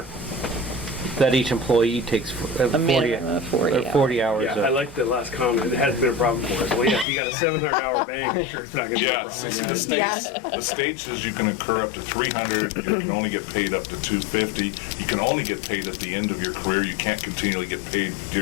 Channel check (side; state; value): right; drops out; at 7.1 s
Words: that each employee takes 40 minimum of 40 hours. Yeah, I like the last comment. It hasn't been a problem for us. Well, yeah, if you got a 700-hour bank, sure, it's not going to be a yeah, problem. the state says you can incur up to 300, you can only get paid up to 250, you can only get paid at the end of your career, you can't continually get paid